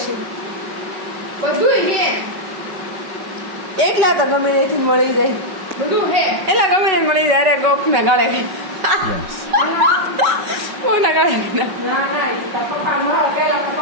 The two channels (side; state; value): left; late; 5.3 ms